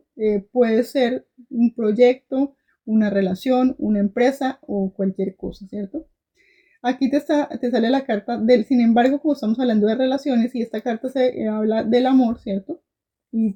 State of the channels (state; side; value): identical; both; correlation 1.00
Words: Puede ser un proyecto, una relación, una empresa o cualquier cosa, ¿cierto? Aquí te sale la carta del, sin embargo, como estamos hablando de relaciones y esta carta se habla del amor, ¿cierto? Y